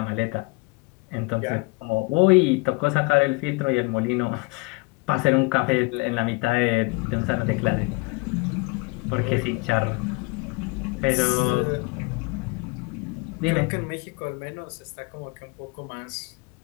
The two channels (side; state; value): right; quieter; 27.0 dB